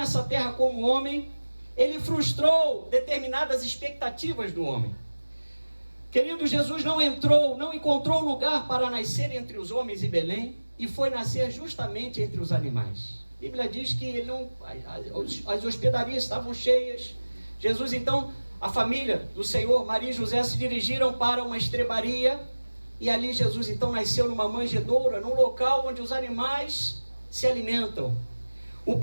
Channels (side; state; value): both; inverted; correlation -1.00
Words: terra como homem, ele frustrou determinadas expectativas do homem. Querido, Jesus não encontrou lugar para nascer entre os homens em Belém, e foi nascer justamente entre os animais. A Bíblia diz que as hospedarias estavam cheias. Jesus então, a família do Senhor, Maria e José, se dirigiram para uma estrebaria, e ali Jesus então nasceu numa manjedoura, num local onde os animais se alimentam. O